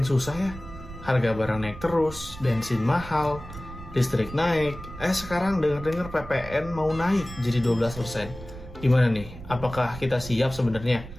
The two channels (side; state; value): right; noise; rumble, 14 dB below the sound